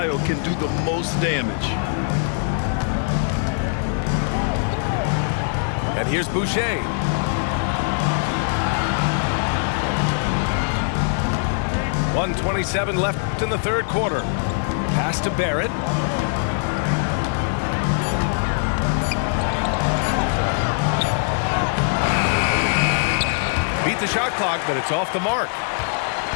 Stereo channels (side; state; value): right; silent; digital silence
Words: can do the most damage. And here's Boucher. .127 left in the third quarter. Pass to Barrett. beat the shot clock, but it's off the mark.